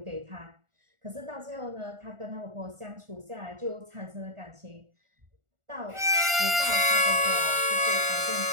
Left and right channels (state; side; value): late; left; 1.4 ms